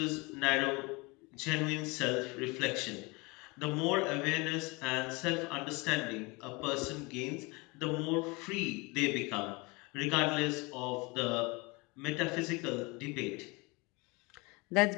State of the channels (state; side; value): quieter; right; 26.5 dB